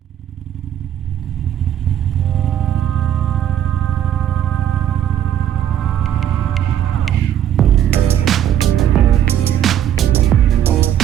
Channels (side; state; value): left; quieter; 10.4 dB